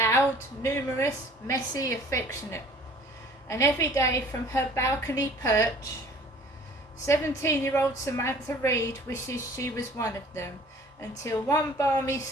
numerous, messy, affectionate. And every day from her balcony perch, 17-year-old Samantha Reed wishes she was one of them, until one balmy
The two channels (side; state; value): both; normal; correlation 0.51